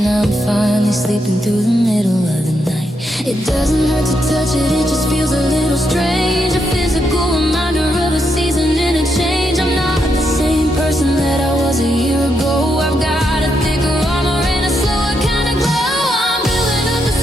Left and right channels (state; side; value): normal; both; correlation 0.81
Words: I'm finally sleeping through the middle of the night. It doesn't hurt to touch it, it just feels a little strange, a physical reminder of a season and a change. I'm not the same person that I was a year ago. I've got a thicker armor and a slower kind of glow. I'm building up the